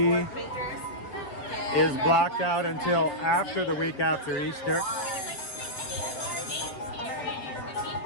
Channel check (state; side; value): late; right; 7.5 ms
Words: is blocked out until after the week after Easter.